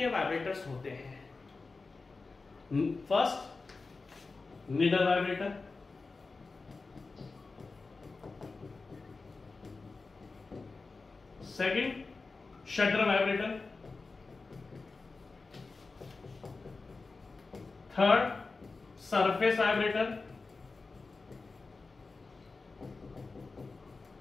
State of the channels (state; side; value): quieter; right; 4.0 dB